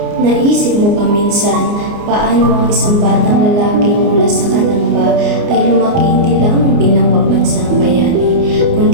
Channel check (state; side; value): late; left; 29 ms